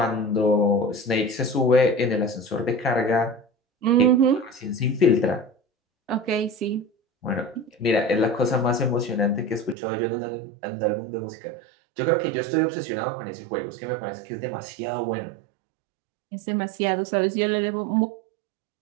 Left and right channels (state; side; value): drops out; left; at 9.8 s